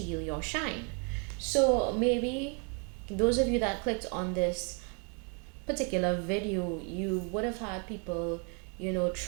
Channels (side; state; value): left; quieter; 36.3 dB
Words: your shine. So maybe those of you that clicked on this particular video, you would have had people,